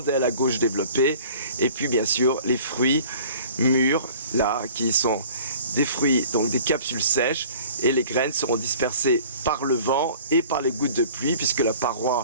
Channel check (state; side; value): inverted; both; correlation -0.48